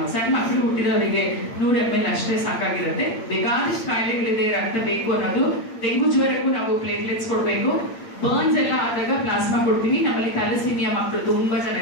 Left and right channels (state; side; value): late; right; 8.8 ms